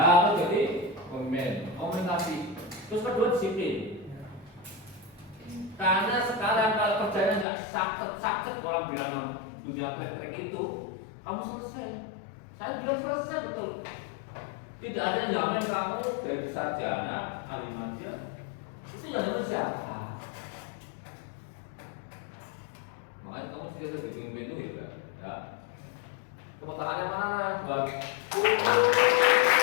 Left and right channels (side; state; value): right; drops out; at 7.5 s